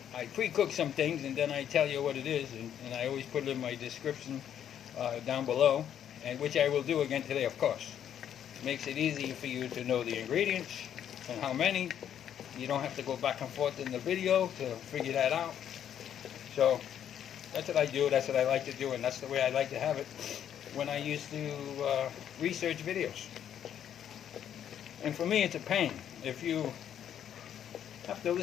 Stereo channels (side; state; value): right; quieter; 9.7 dB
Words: pre-cook some things and then I tell you what it is, and I always put it in my description down below, and which I will do again today, of course. It makes it easy for you to know the ingredients and how many. You don't have to go back and forth in the video to figure that out. So that's what I do, that's what I like to do, and that's the way I like to have it when I used to research videos. And for me, it's a pain. If you have to